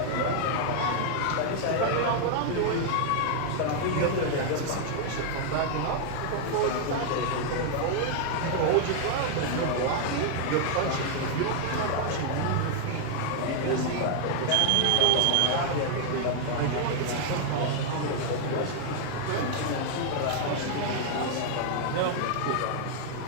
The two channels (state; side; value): different; both; correlation 0.00